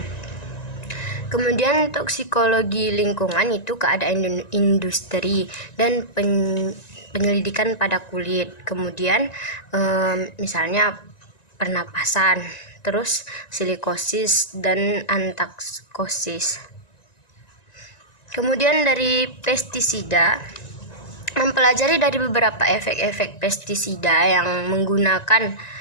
Kemudian toksikologi lingkungan itu keadaan industri dan penyelidikan pada kulit. Kemudian misalnya pernapasan, terus silikosis dan antaksosis. Kemudian dari pestisida, mempelajari dari beberapa efek-efek pestisida yang menggunakan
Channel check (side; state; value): right; late; 1.9 ms